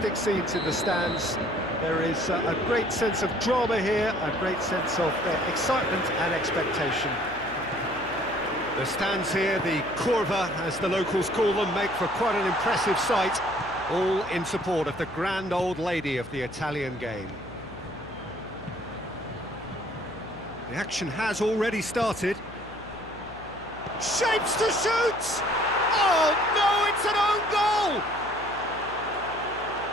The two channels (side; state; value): left; noise; hum, 18 dB below the sound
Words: scenes in the stands. There is a great sense of drama here, a great sense of excitement and expectation. The stands here, the curva, as the locals call them, make for quite an impressive sight, all in support of the grand old lady of the Italian game. The action has already started. Shapes to shoot! Oh no, it's an own goal!